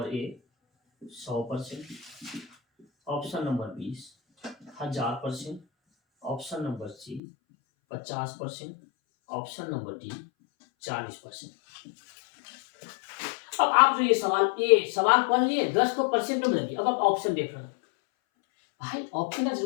A 100%, option number 20 1000%, option number C 50%, option number D 40%। अब आप जो ये सवाल पढ़ लिए, 10 को परसेंट में बदलिए, अब आप ऑप्शन देख रहे हैं, भाई ऑप्शन का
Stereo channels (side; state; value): right; drops out; at 7.2 s